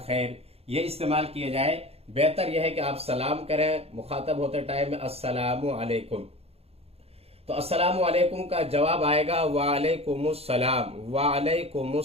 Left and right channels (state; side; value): late; left; 0.29 ms